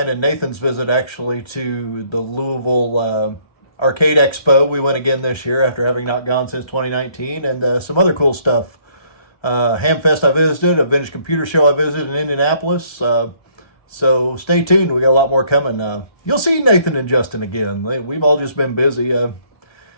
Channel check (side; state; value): right; late; 1.2 ms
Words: and Nathan's visit actually to the Louisville Arcade Expo. We went again this year after having not gone since 2019, and some other cool stuff. Hamfest I visited, a vintage computer show I visited in Indianapolis. So stay tuned. We got a lot more coming. You'll see Nathan and Justin again. We've all just been busy. In